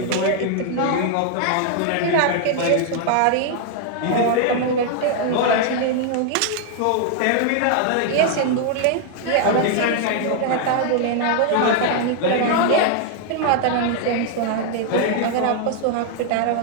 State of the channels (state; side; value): different; both; correlation 0.00